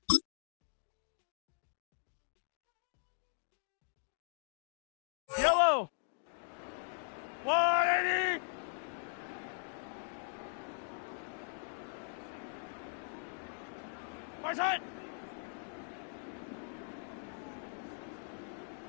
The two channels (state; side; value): silent; right; 51 dB below the other